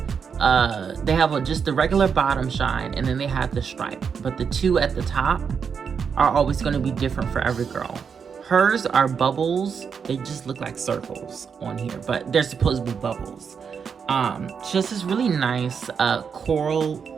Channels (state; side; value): quieter; left; 6.4 dB